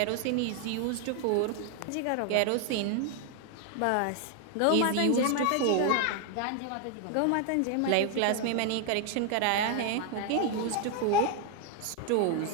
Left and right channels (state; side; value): different; both; correlation 0.00